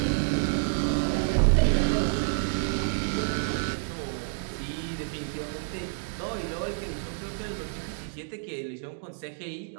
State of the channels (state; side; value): silent; left; digital silence